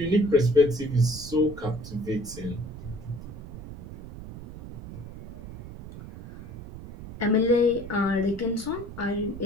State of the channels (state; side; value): noise; right; rumble, 13 dB below the sound